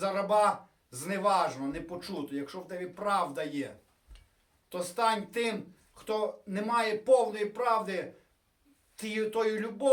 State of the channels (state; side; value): identical; both; correlation 1.00